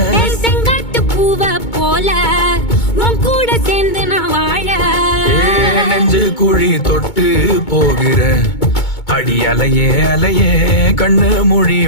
செங்காட்டு பூவ போல உன் கூட சேர்ந்து நான் வாழ. நெஞ்சு குழி தொட்டு போகிற அடி அலையே அலையே கண்ணு மொழி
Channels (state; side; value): late; right; 2.2 ms